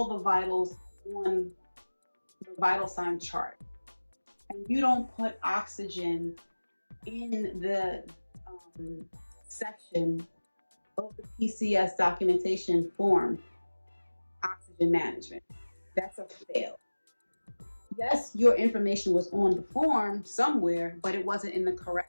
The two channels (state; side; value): inverted; both; correlation -1.00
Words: the vitals on the vital sign chart. And you don't put oxygen in the section of the PCS documentation form, oxygen management. That's a fail. Yes, your information was on the form somewhere, but it wasn't in the